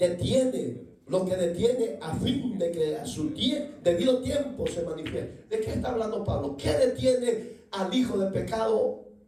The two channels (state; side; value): identical; both; correlation 1.00